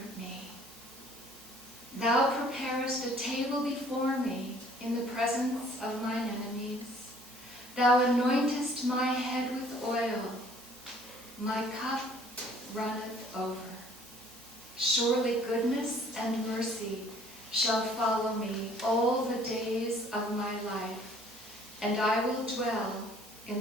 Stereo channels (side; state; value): right; noise; hum, 26 dB below the sound